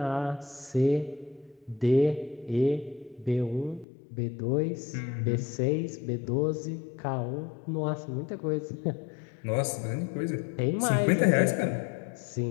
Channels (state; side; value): drops out; right; at 3.9 s